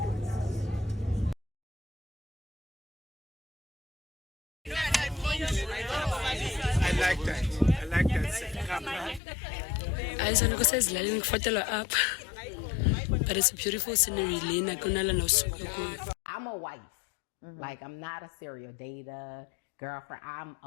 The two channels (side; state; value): right; drops out; at 9.2 s